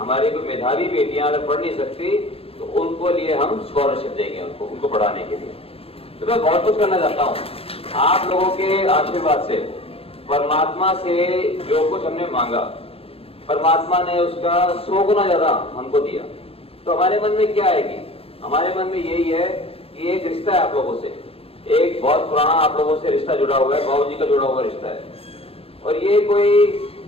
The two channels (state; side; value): late; right; 0.28 ms